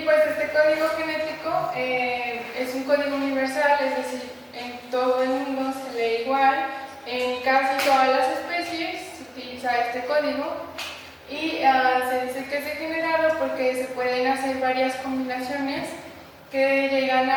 este código genético es un código universal, es decir, en todo el mundo se lee igual, en casi todas las especies se utiliza este código y se dice que es degenerado porque se pueden hacer varias combinaciones que llegan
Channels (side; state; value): both; identical; correlation 1.00